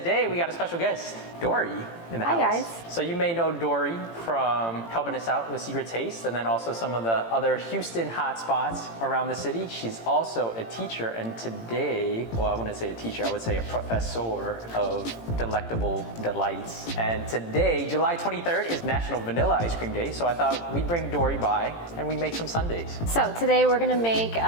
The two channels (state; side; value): late; right; 18 ms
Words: we got a special guest, Dory, in the house. Hi, guys. So you may know Dory from helping us out with Secret Taste, and then also some of the other Houston hotspots around the city. She's also a teacher, and today, well, I wouldn't say a teacher, I would say a professor of delectable delights. And today, July 23rd, is National Vanilla Ice Cream Day, so I thought we'd bring Dory by and we'd make some sundaes. So today we're gonna make